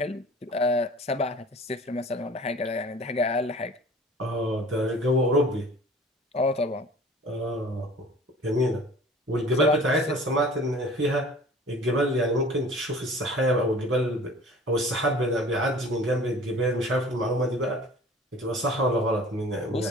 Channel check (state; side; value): normal; both; correlation 0.46